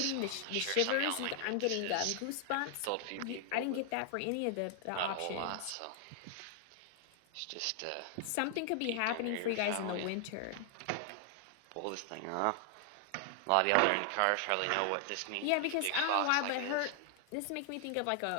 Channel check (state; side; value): different; both; correlation 0.00